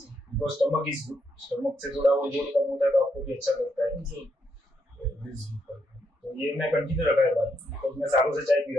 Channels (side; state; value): both; normal; correlation 0.78